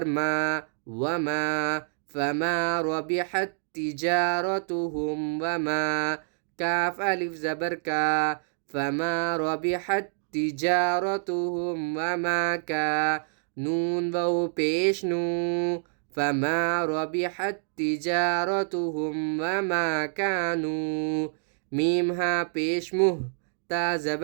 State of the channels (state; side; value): silent; left; digital silence